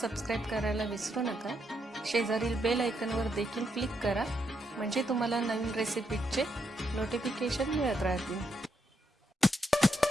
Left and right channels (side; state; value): both; normal; correlation 0.79